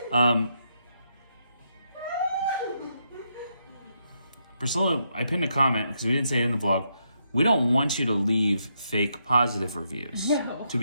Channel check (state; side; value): inverted; both; correlation -0.79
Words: Priscilla, I pinned a comment because we didn't say it in the vlog. We don't want you to leave fake positive reviews. No. To